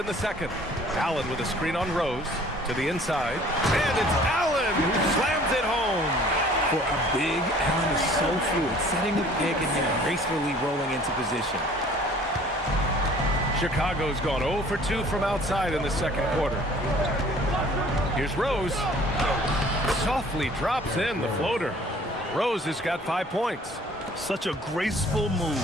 the second. Allen with a screen on Rose to the inside. And it's Allen who slams it home. For a big, Allen is so fluid, setting the pick and then gracefully rolling into position. Chicago's gone 0 for 2 from outside in the second quarter. Here's Rose. Softly drops in the floater. Rose has got 5 points. Such a graceful move,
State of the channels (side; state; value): both; normal; correlation 0.52